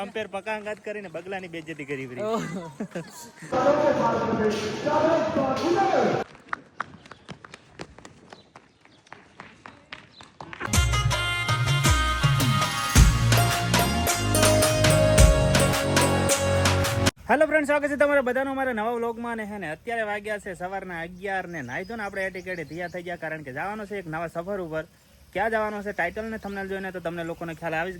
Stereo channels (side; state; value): both; identical; correlation 1.00